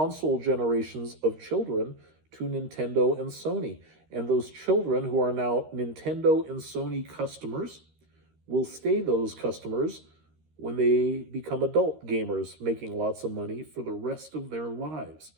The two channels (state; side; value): late; left; 13 ms